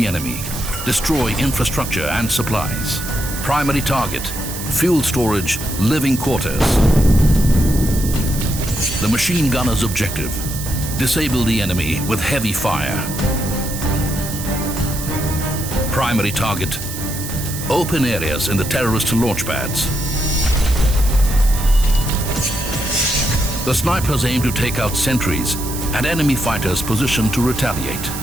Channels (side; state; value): right; noise; hiss, 8 dB below the sound